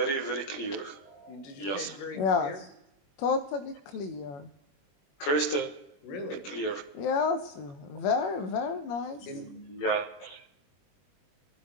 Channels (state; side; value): late; right; 21 ms